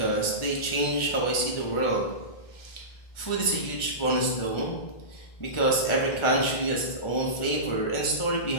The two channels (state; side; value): late; right; 1.4 ms